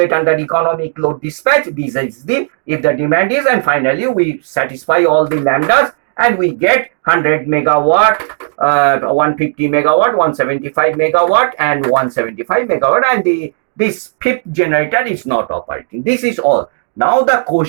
under economic load dispatch. This is the, if the demand is, and finally we satisfy all the lambdas and we get 100 megawatt, 150 megawatt, 175 megawatt and 175 megawatt, and this fifth generator is not operating. This is all. Now the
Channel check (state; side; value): silent; left; digital silence